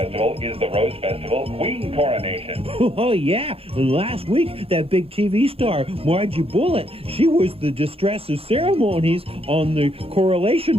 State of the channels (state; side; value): late; left; 0.28 ms